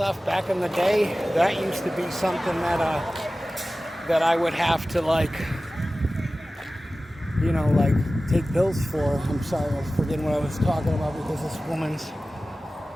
Back in the day, that used to be something that I would have to like, you know, like take pills for. I'm sorry, I was forgetting what I was talking about because this woman's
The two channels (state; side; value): normal; both; correlation 0.96